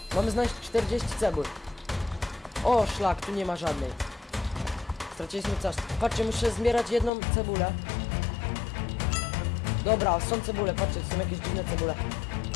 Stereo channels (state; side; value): drops out; right; at 7.1 s